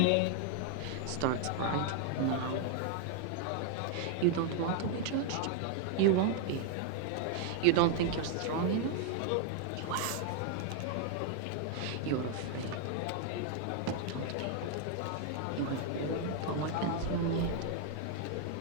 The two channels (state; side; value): different; both; correlation 0.00